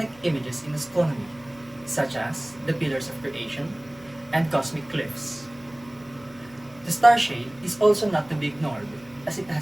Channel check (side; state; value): left; noise; hum, 25 dB below the sound